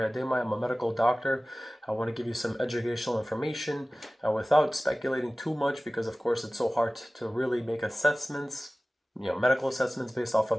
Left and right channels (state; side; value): normal; both; correlation 0.97